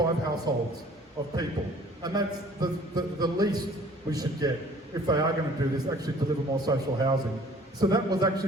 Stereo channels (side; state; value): both; normal; correlation 0.53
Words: households of people. And that's the least we should get if they are going to do this, actually deliver more social housing. So that was